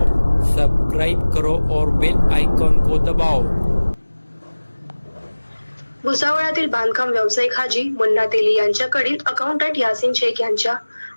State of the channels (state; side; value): inverted; both; correlation -1.00